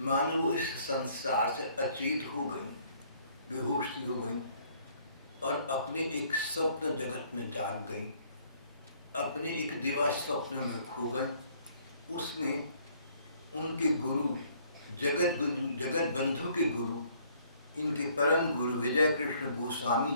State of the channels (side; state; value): both; inverted; correlation -0.62